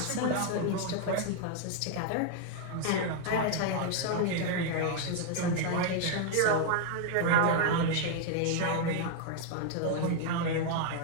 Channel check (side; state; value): both; different; correlation 0.00